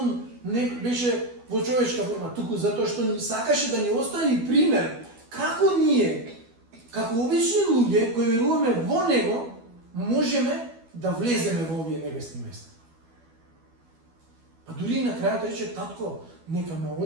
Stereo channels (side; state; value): left; late; 12 ms